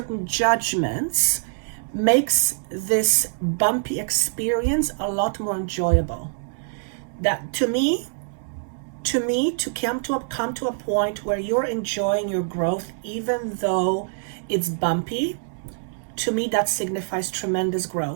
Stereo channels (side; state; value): left; silent; 62 dB below the other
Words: judgments makes this bumpy experience a lot more enjoyable. That to come to a point where you're enjoying your growth even though it's bumpy, to me that signifies tremendous